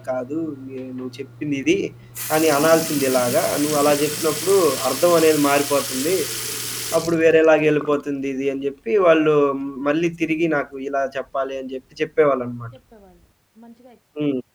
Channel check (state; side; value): identical; both; correlation 1.00